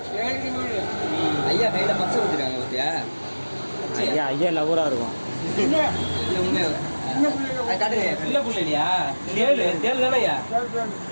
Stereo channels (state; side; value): inverted; both; correlation -1.00